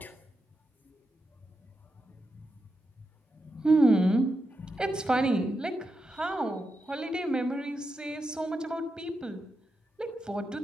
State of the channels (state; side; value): normal; both; correlation 0.87